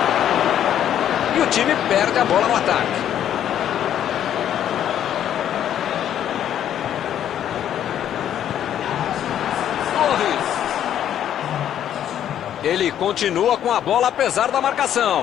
E o time perde a bola no ataque. Torres. Ele continua com a bola apesar da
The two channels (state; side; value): quieter; right; 10.4 dB